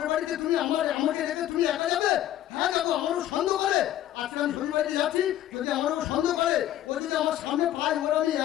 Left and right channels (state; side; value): quieter; right; 12.6 dB